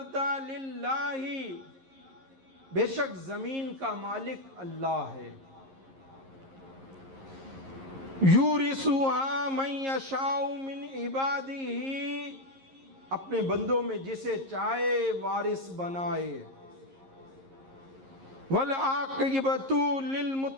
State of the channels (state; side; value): late; left; 11 ms